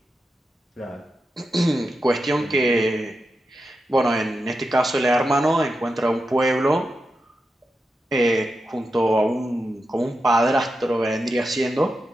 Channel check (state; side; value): normal; both; correlation 0.89